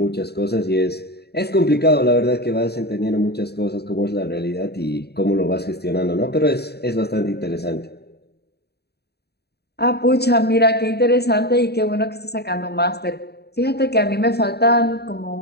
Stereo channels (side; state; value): right; late; 0.47 ms